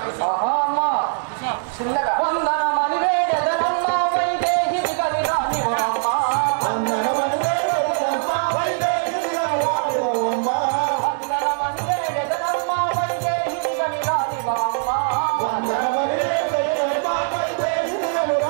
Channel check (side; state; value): left; silent; digital silence